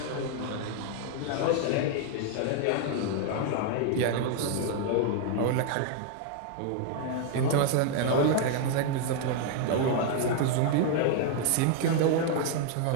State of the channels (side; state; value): both; different; correlation 0.00